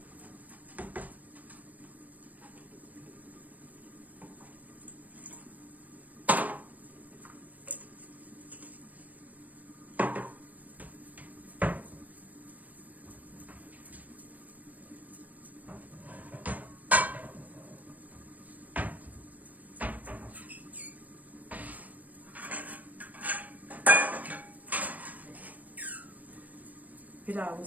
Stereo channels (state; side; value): late; left; 0.077 ms